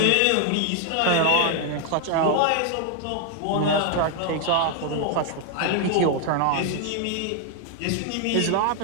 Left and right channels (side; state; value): both; different; correlation 0.00